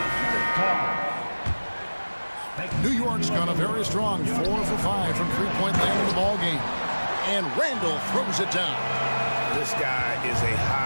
New York's gone a very strong 4 for 5 from three-point land in the ball game. And Randall throws it down. This guy is a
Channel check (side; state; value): both; inverted; correlation -1.00